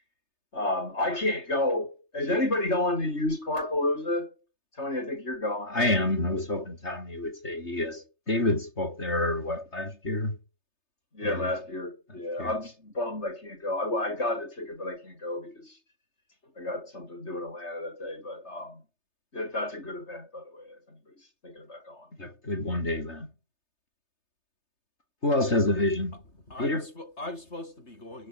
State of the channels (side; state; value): right; late; 3.3 ms